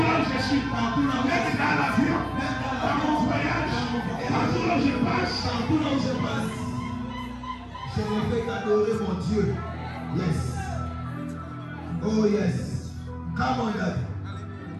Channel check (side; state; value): both; identical; correlation 1.00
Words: là où je suis, même dans l'avion, dans mon voyage, partout là où je passe. Je me fais adorer mon Dieu. Yes. Oh yes. Come on, Daddy.